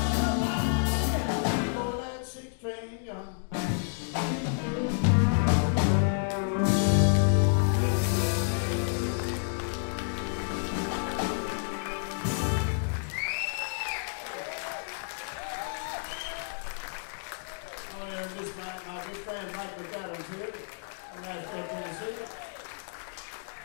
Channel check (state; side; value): silent; right; digital silence